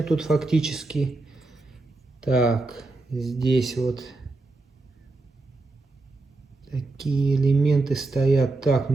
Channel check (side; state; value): left; quieter; 3.2 dB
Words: тут фактически. Так, здесь вот такие элементы стоят. Так,